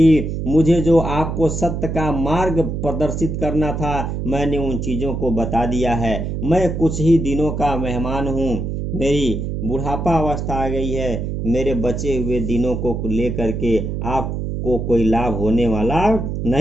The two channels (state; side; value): noise; right; hum, 3 dB below the sound